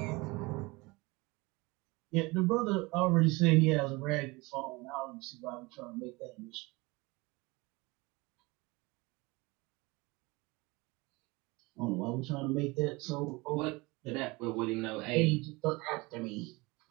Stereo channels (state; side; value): quieter; left; 24.0 dB